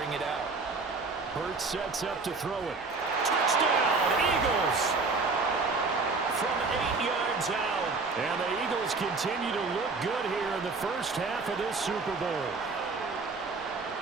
it out. Hurts sets up to throw it. Touchdown, Eagles! From 8 yards out. And the Eagles continue to look good here in the first half of this Super Bowl.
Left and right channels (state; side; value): quieter; left; 4.0 dB